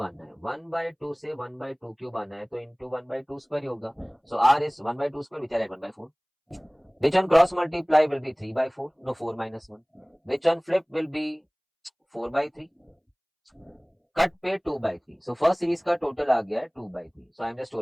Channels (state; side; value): identical; both; correlation 1.00